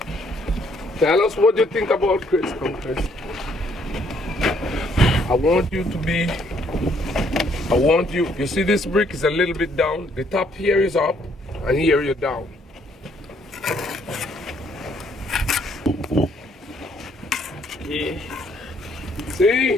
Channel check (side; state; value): both; normal; correlation 0.67